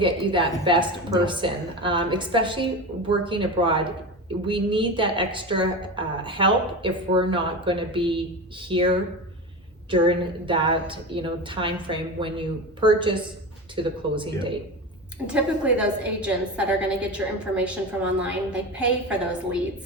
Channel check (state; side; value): normal; both; correlation 0.25